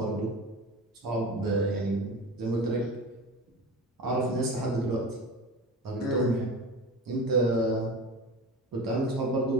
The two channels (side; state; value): both; normal; correlation 0.31